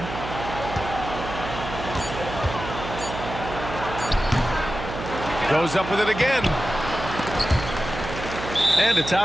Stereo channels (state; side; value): noise; right; hum, 8 dB below the sound